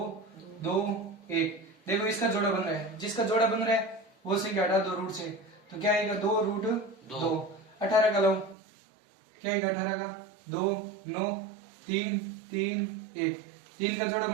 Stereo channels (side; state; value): left; drops out; at 8.6 s